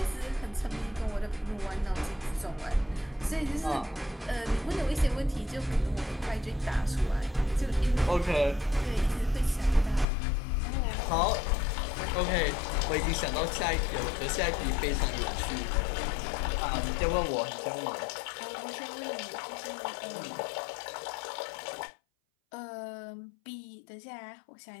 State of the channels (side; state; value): right; drops out; at 10.1 s